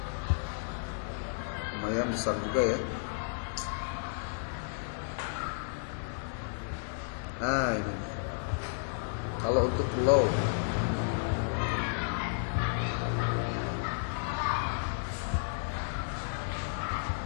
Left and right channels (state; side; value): silent; right; digital silence